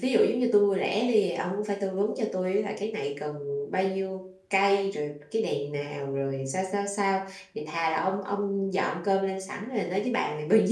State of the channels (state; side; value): identical; both; correlation 1.00